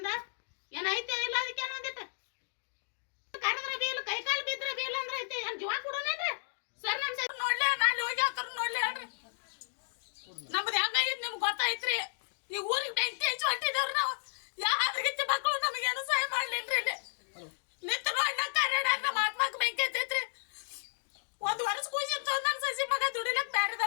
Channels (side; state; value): right; silent; digital silence